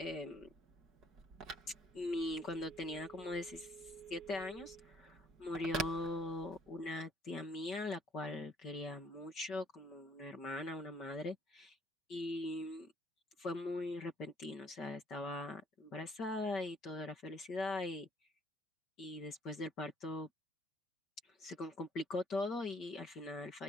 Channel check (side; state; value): both; normal; correlation 0.64